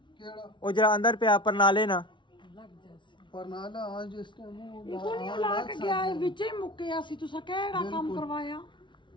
वो जरा अंदर पे आप नाले ना परनाला आज इस टाइम ਇਹ ਕੋਣੀ ਲਾ ਕੇ ਗਿਆ ਇਹ ਵਿੱਚ ਹੀ ਮੁੱਕਿਆ ਸੀ ਤੁਸੀਂ ਕਿਹੜਾ ਕੰਮ ਕਰਵਾਇਆ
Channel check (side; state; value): right; late; 0.24 ms